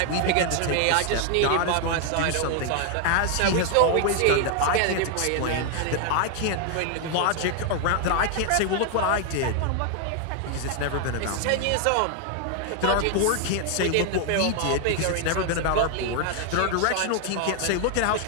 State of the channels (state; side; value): different; both; correlation 0.00